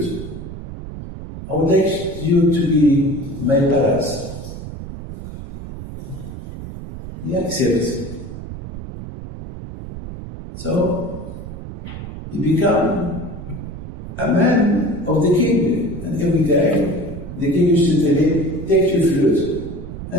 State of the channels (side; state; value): right; noise; rumble, 11 dB below the sound